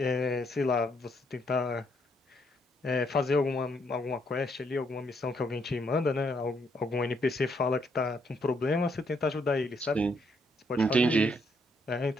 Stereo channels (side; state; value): both; normal; correlation 0.72